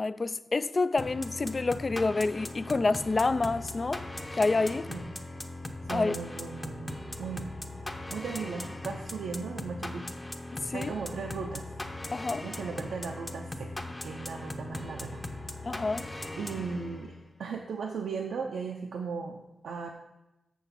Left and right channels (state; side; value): normal; both; correlation 0.92